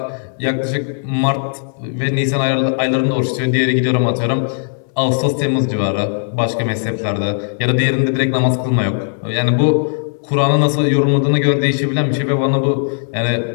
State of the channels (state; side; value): silent; right; digital silence